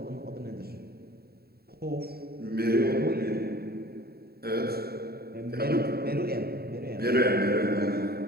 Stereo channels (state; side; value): late; left; 0.45 ms